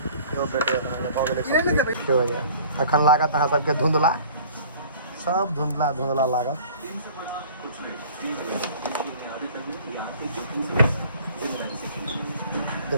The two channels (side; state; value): both; inverted; correlation -0.49